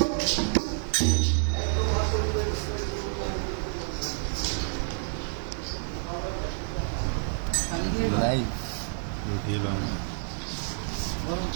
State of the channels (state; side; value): silent; left; 59 dB below the other